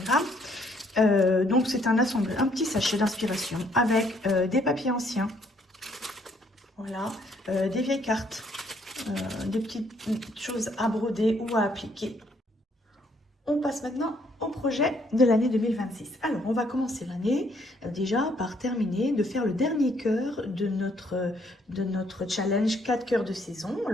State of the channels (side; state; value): both; normal; correlation 0.67